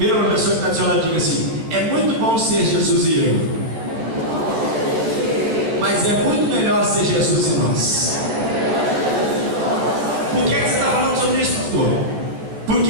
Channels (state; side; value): late; left; 13 ms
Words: uma pessoa que está do seu lado e diga assim: é muito bom ser Jesus e eu, mas é muito melhor ser Jesus e nós. Por que você está falando sobre isso, pastor?